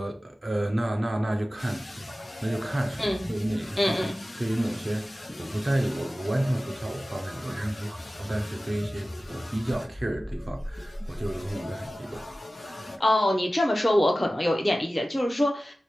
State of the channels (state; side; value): normal; both; correlation 0.96